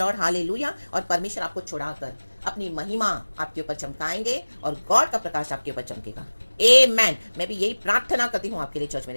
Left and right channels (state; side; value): inverted; both; correlation -1.00